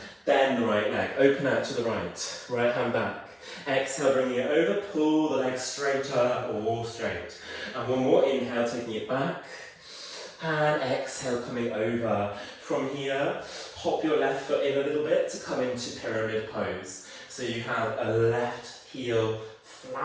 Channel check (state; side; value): identical; both; correlation 1.00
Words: Bend the right leg, open out to the right, right hand back. Exhale, bringing it over, pull the leg straighter or straight. And one more, inhale, taking it back. And exhale, coming over. From here, hop your left foot in a little bit to come into pyramid pose. So you have a left heel